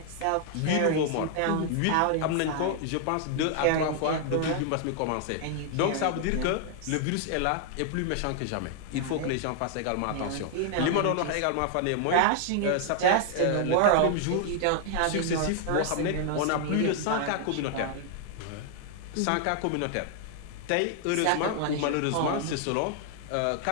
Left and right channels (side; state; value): both; different; correlation 0.00